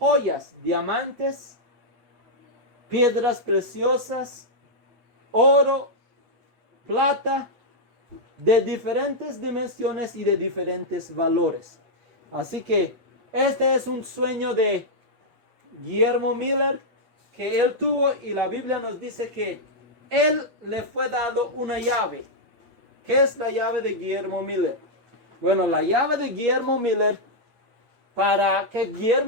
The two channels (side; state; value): left; late; 8.4 ms